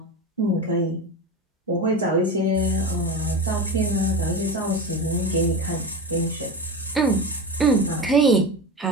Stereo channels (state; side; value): normal; both; correlation 0.24